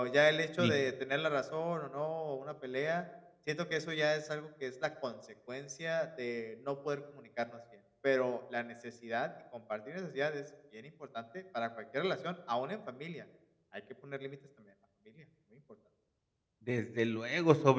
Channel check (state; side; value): identical; both; correlation 1.00